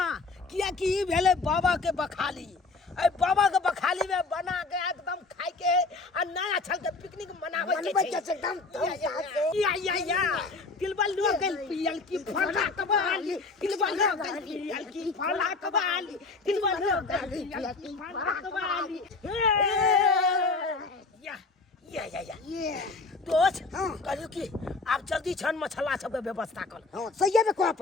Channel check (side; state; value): right; quieter; 3.8 dB